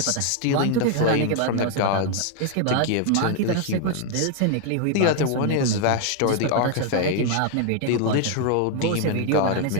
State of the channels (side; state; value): both; different; correlation 0.00